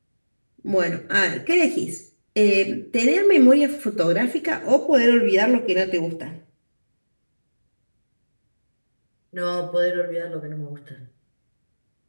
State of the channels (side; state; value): both; inverted; correlation -1.00